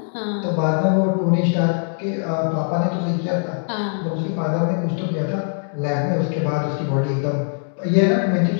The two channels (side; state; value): right; silent; 63 dB below the other